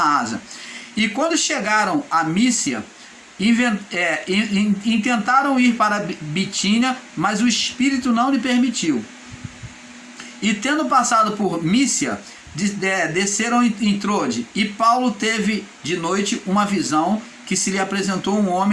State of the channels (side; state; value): both; identical; correlation 1.00